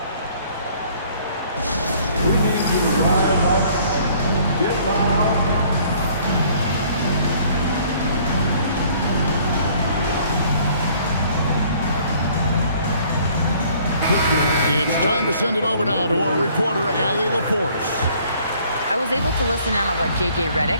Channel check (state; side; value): inverted; both; correlation -0.58